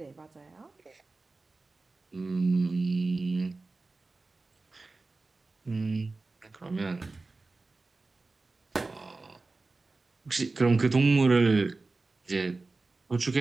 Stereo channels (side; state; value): left; quieter; 3.5 dB